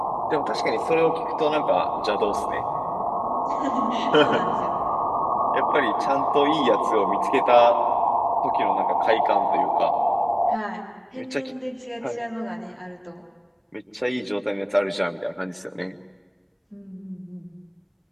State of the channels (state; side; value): identical; both; correlation 1.00